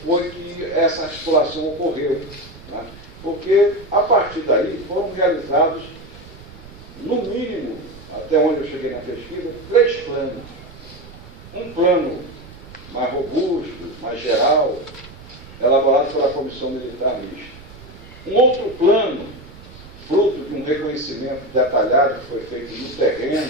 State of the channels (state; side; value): noise; right; rumble, 18 dB below the sound